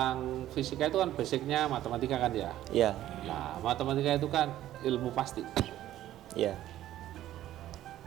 fisika itu kan basicnya matematika kan ya? Iya. Nah, matematika itu kan ilmu pasti. Iya.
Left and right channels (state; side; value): quieter; left; 13.2 dB